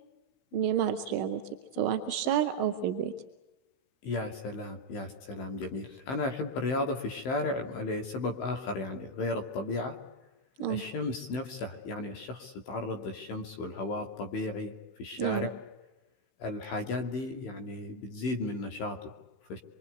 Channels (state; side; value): late; right; 15 ms